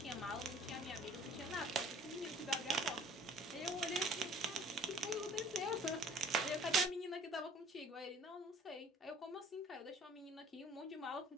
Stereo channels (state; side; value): normal; both; correlation 0.52